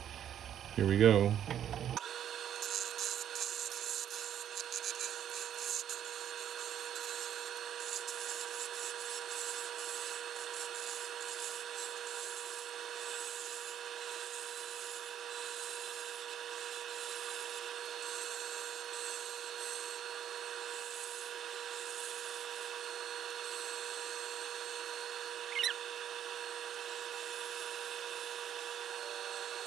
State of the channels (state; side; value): quieter; left; 10.0 dB